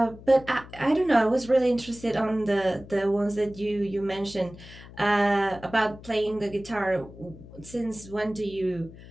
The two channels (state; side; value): noise; left; hum, 18 dB below the sound